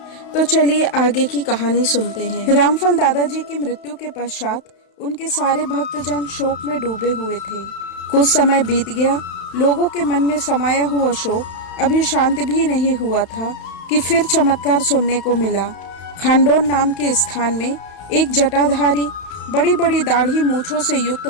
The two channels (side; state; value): right; late; 32 ms